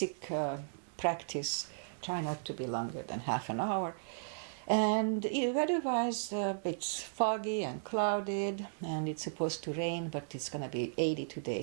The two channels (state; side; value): silent; left; digital silence